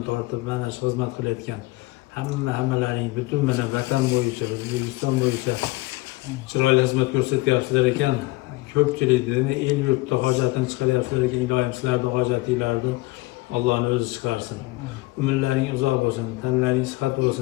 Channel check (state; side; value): quieter; right; 21.0 dB